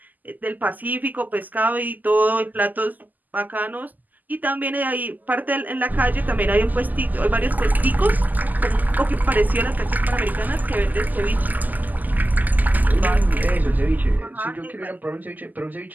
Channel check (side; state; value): left; late; 0.083 ms